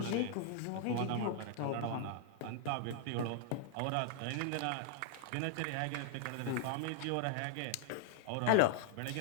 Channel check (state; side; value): different; both; correlation 0.00